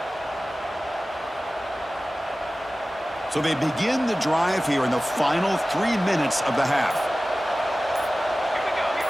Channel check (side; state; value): both; normal; correlation 0.97